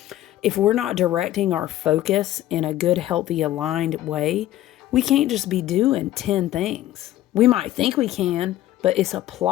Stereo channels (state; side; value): quieter; right; 13.9 dB